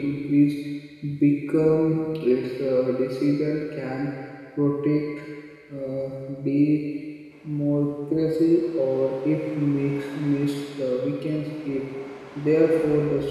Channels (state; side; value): identical; both; correlation 1.00